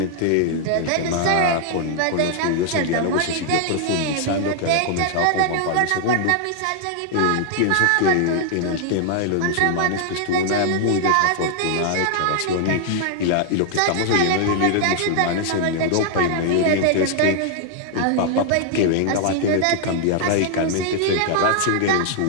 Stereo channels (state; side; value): different; both; correlation 0.00